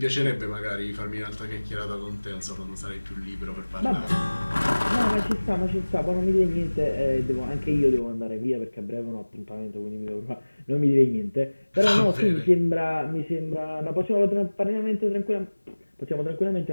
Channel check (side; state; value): both; inverted; correlation -1.00